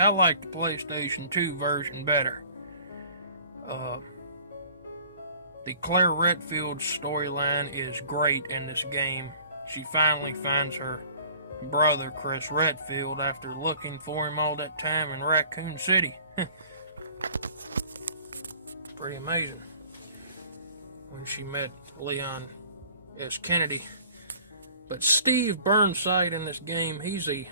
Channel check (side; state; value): both; inverted; correlation -0.50